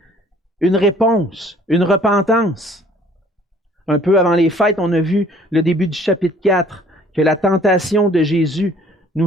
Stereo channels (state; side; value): normal; both; correlation 0.56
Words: une réponse, une repentance. Un peu avant les fêtes, on a vu le début du chapitre 4, que la tentation de Jésus nous